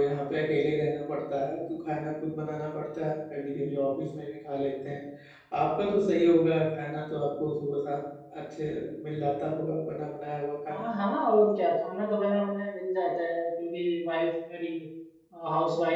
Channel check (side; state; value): both; identical; correlation 1.00